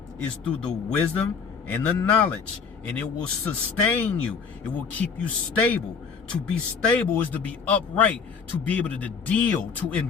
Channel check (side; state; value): right; quieter; 5.7 dB